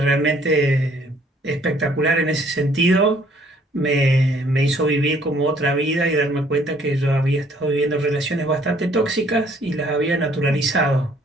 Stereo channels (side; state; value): both; normal; correlation 0.61